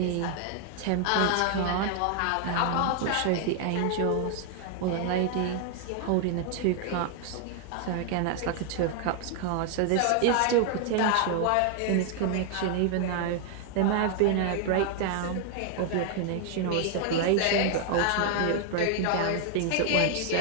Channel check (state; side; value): different; both; correlation 0.00